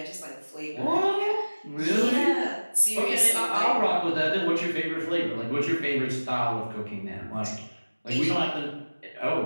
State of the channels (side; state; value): both; inverted; correlation -1.00